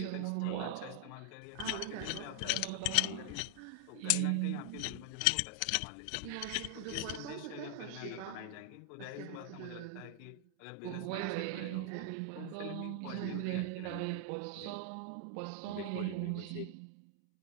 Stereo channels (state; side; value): different; both; correlation 0.00